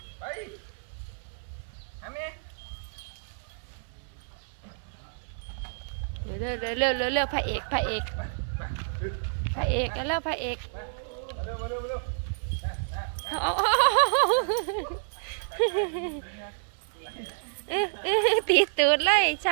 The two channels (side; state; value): left; silent; 58 dB below the other